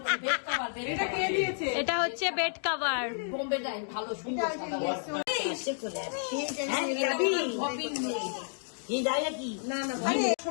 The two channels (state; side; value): silent; right; digital silence